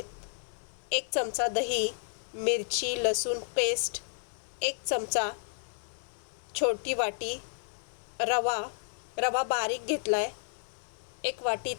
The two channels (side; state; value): right; silent; digital silence